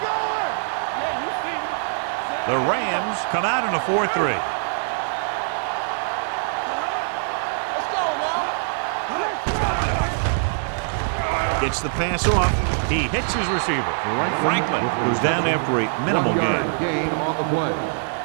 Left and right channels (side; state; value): left; silent; digital silence